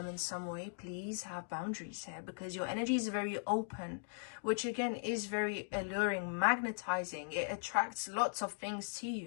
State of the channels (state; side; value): silent; right; digital silence